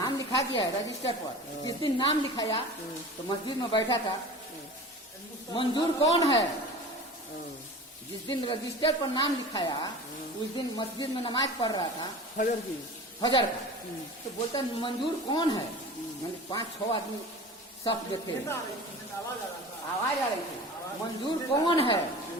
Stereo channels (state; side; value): normal; both; correlation 0.37